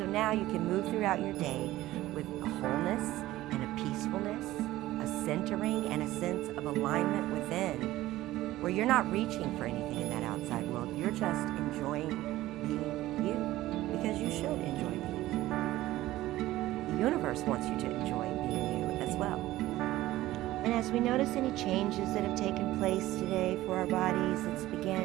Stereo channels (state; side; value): quieter; left; 16.1 dB